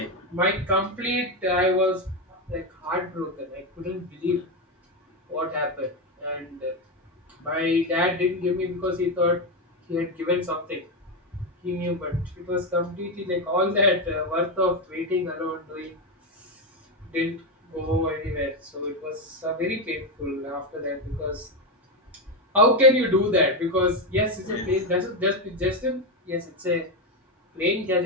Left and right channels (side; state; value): both; normal; correlation 0.10